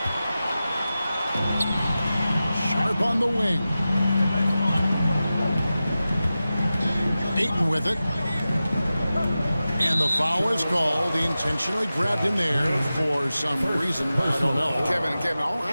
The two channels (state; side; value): inverted; both; correlation -0.94